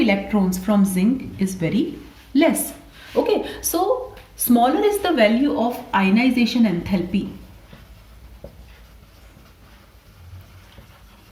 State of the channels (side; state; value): both; identical; correlation 1.00